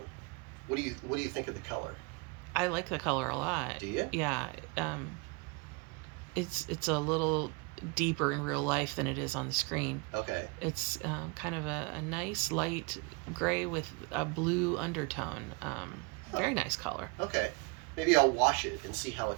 What do you think of the color? I like the color a lot. Do you? Yeah. It's a little deeper in real life than it is on the screen. Okay. It's kind of a nice light gray with a blue undertone. Very nice color. Okay. Maybe I'll wash it and see how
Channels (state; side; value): quieter; left; 29.6 dB